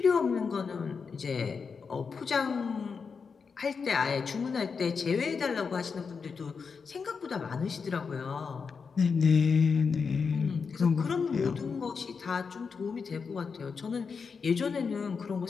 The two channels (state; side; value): quieter; right; 5.5 dB